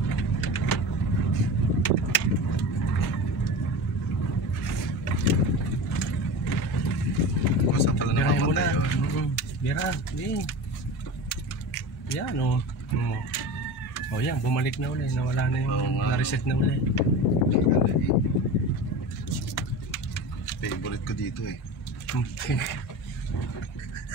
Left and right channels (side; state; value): both; normal; correlation 0.30